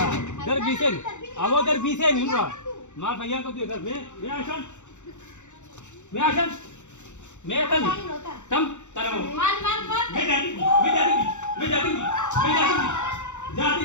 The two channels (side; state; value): right; late; 0.84 ms